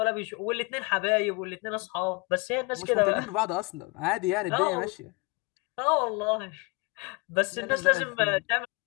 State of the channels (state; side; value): quieter; right; 26.9 dB